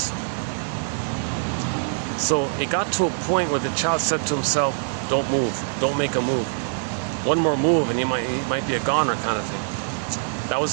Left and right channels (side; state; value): left; silent; 63 dB below the other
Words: So it got to a point where the child said to himself, don't move, don't make a move. One more move and he might be a goner kind of thing. That